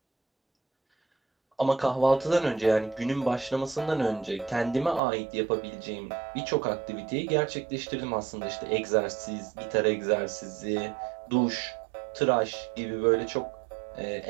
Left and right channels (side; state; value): left; drops out; at 5.0 s